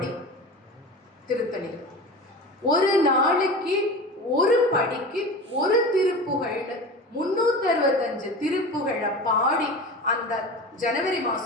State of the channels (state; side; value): normal; both; correlation 0.31